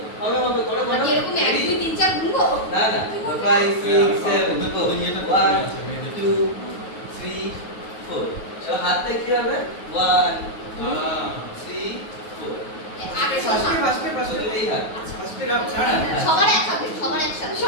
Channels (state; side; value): late; right; 9.4 ms